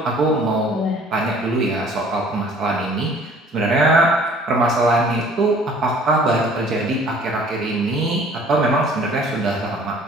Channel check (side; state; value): both; normal; correlation 0.53